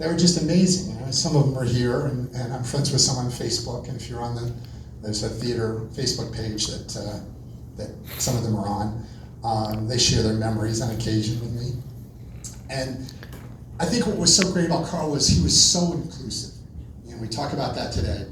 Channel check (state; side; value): identical; both; correlation 1.00